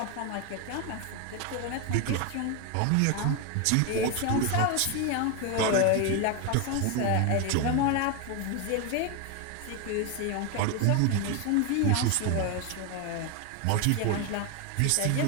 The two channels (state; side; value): different; both; correlation 0.02